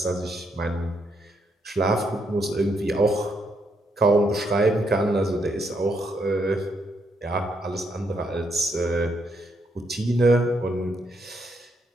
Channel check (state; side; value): normal; both; correlation 0.77